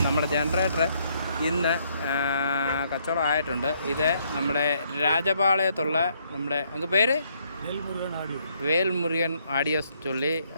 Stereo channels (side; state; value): both; inverted; correlation -0.71